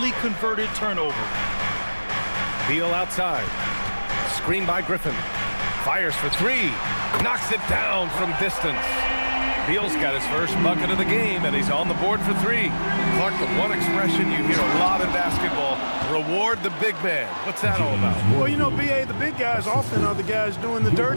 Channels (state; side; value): inverted; both; correlation -1.00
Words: converted turnover. Beal outside. Screen by Griffin. Fires for three. Knocks it down from distance. Beal's got his first bucket of the game, and he's on the board for three. Clark, the one expression you hear a lot in basketball, reward the big man. What's that all about? Well, you know, B.A., the big guys often are the guys doing the